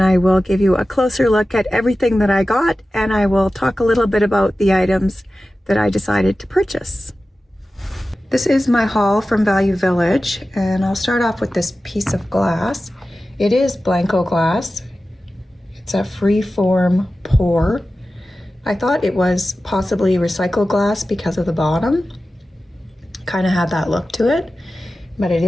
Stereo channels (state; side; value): normal; both; correlation 0.95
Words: will give you a closer look at everything that I got, and I will talk a little bit about the items that I decided to purchase. This is my haul from Value Village, and I'll start off with this piece of glass. It is Blanco glass. It's a free-form pour. I thought it was possibly recycled glass because of the bottom. Kind of had that look to it, but it